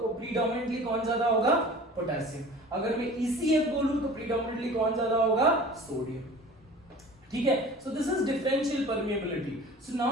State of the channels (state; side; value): normal; both; correlation 0.42